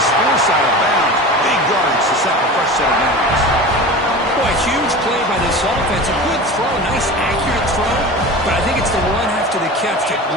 forced out of bounds. Big yards to set the fresh set of downs. Boy, huge play by this offense. A good throw, nice accurate throw. But I think it's the run after the catch that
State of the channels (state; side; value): normal; both; correlation 0.33